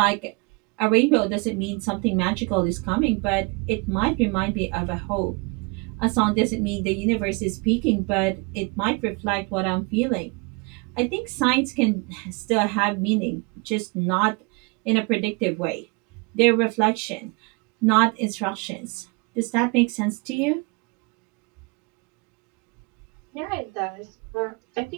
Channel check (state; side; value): quieter; left; 29.4 dB